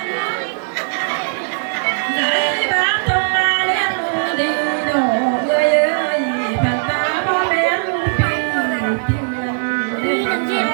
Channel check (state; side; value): silent; left; 67 dB below the other